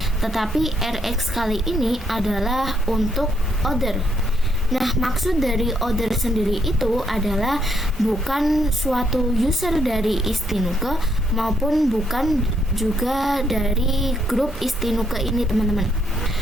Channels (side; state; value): both; normal; correlation 0.73